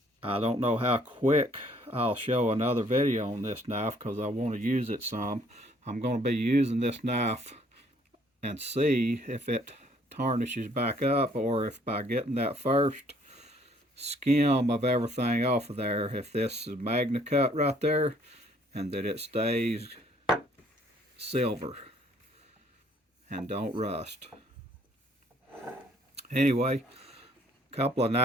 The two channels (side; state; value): both; normal; correlation 0.62